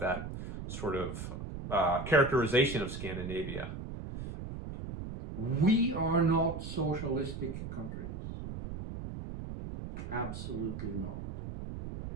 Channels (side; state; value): right; noise; rumble, 7 dB below the sound